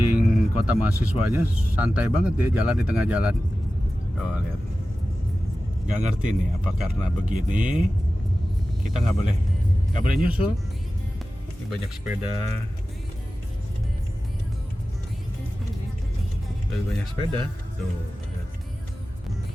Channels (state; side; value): normal; both; correlation 0.95